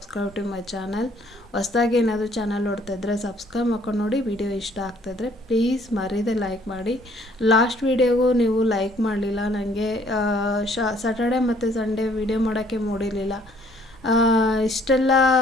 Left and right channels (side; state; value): both; normal; correlation 0.61